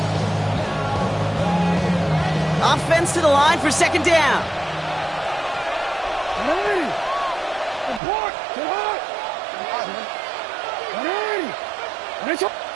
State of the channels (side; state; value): left; drops out; at 8.0 s